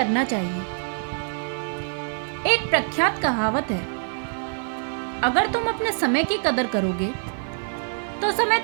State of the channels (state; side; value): silent; left; 62 dB below the other